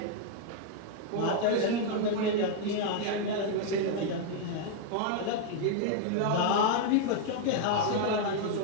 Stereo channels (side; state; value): both; different; correlation 0.00